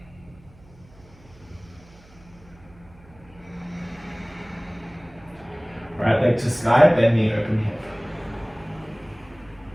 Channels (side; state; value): right; noise; hum, 25 dB below the sound